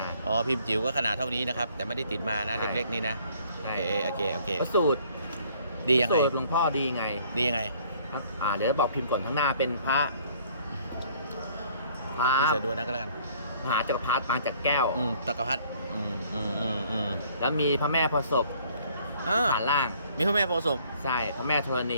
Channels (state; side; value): inverted; both; correlation -0.59